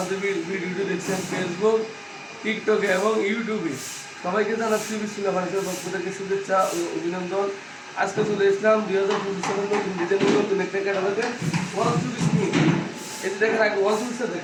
ভিডিওটি দেখছেন, ফেসবুক, টিকটকে এবং ইউটিউবে, সবাইকে জানাচ্ছি বিসমিল্লাহ ফার্নিচার পক্ষ থেকে শুভেচ্ছা ও অভিনন্দন। আজকে চলে এসলাম 2025 সালের নতুন একটা ক্যাটালগে ওয়াল চুরিশ নিয়ে। এই যে দেখেন, আগে ওয়াল চুরিশটা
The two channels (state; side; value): identical; both; correlation 1.00